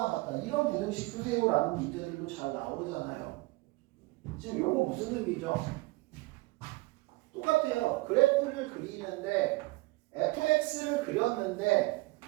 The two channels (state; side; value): quieter; left; 22.0 dB